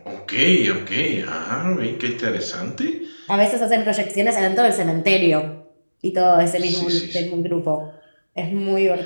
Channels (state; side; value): inverted; both; correlation -1.00